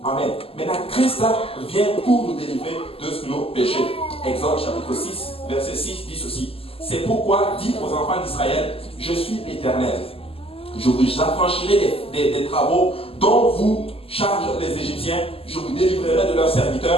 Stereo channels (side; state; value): right; late; 0.28 ms